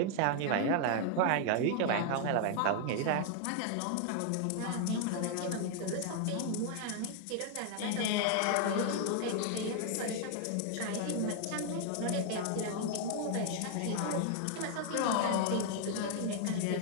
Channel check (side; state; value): both; different; correlation 0.00